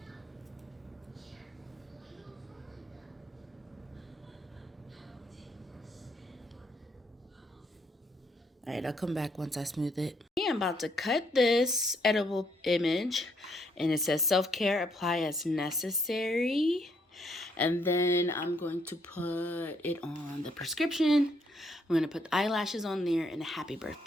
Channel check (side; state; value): both; normal; correlation 0.72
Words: Alright, I'll come back once I smooth it. I'm about to cut this edible image, and it says self-care, apply as necessary. And then I'm going to put it on the prescription. I'm going to put the eyelashes on there and a happy